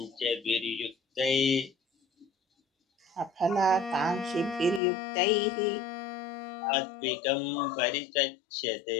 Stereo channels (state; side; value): drops out; right; at 4.8 s